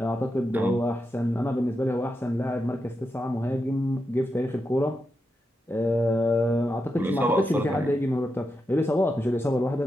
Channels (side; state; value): both; normal; correlation 0.87